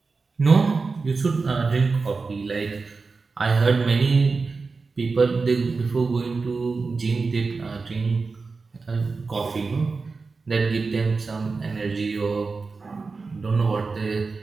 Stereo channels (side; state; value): left; quieter; 4.3 dB